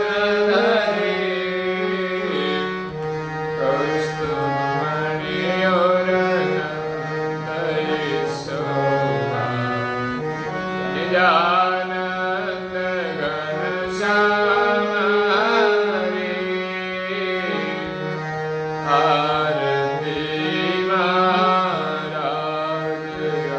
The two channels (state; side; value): identical; both; correlation 1.00